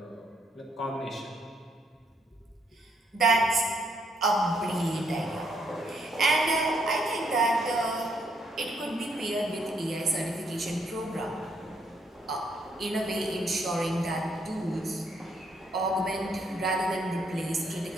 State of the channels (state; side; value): normal; both; correlation 0.73